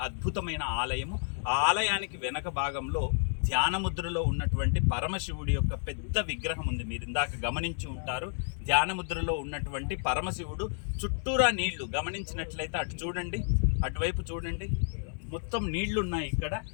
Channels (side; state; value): right; silent; 57 dB below the other